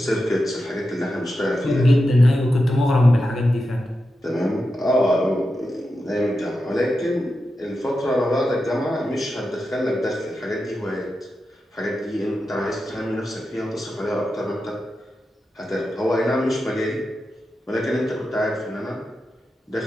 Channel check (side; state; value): both; normal; correlation 0.89